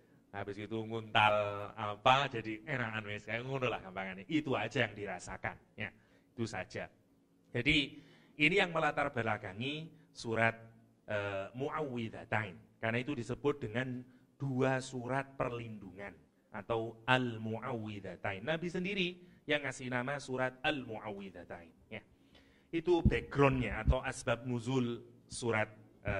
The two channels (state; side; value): identical; both; correlation 1.00